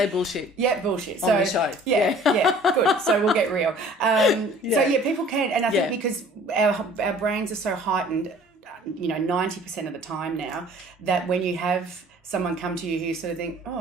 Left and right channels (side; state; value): both; normal; correlation 0.51